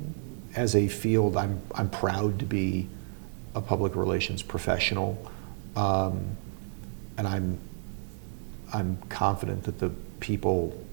as a field, I'm proud to be a public relations professional, and I'm confident that the people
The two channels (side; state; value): left; silent; 56 dB below the other